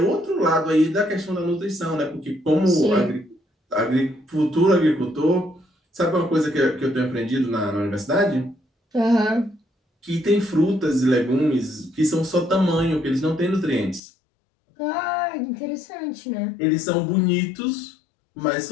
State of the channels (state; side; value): drops out; right; at 14.0 s